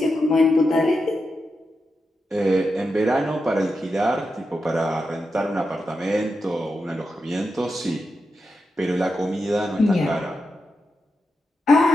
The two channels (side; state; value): both; normal; correlation 0.88